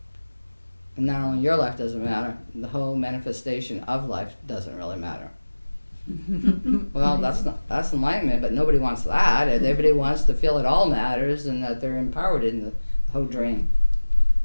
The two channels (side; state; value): both; inverted; correlation -1.00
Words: And not only your life doesn't matter, the whole manifestation of life doesn't really matter. Well, that's enlightenment, but nobody wants that. Everybody wants to feel it all matters and that they're empowered in the whole dream.